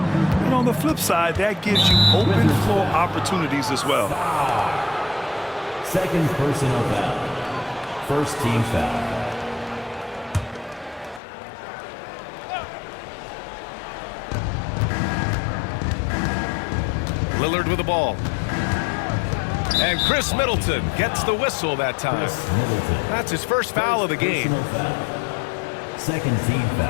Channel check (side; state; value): right; drops out; at 11.2 s